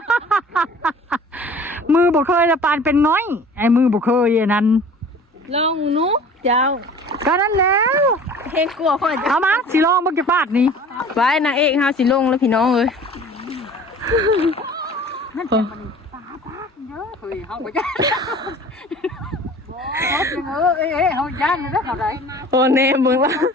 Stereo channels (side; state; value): both; normal; correlation 0.45